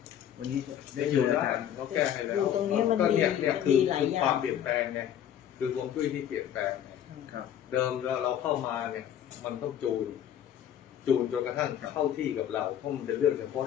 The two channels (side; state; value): right; quieter; 10.2 dB